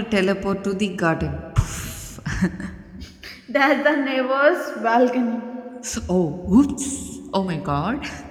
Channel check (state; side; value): identical; both; correlation 1.00